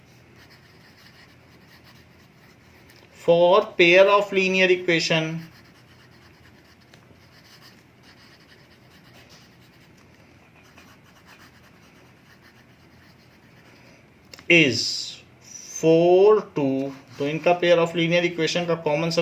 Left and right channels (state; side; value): identical; both; correlation 1.00